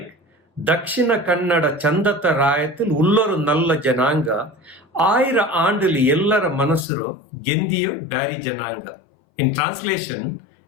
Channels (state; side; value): drops out; right; at 6.9 s